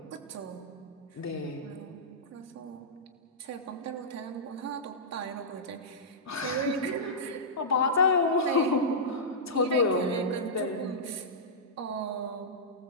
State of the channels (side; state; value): both; normal; correlation -0.13